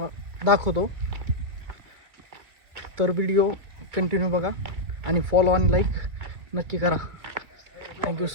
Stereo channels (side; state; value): left; late; 2.1 ms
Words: दाखवतो। तर व्हिडिओ कंटिन्यू बघा आणि फॉलो आणि लाईक नक्की करा। Thank you